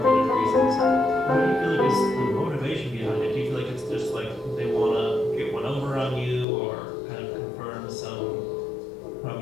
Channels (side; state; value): right; drops out; at 6.5 s